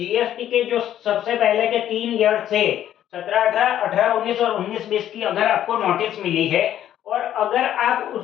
के जो सबसे पहले के 3 ईयर थे 17-18, 18-19 और 19-20 की अगर आपको नोटिस मिली है और अगर आप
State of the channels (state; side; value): quieter; right; 11.3 dB